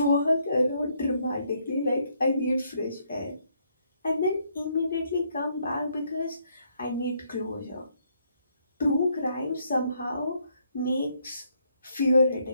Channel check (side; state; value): both; inverted; correlation -0.72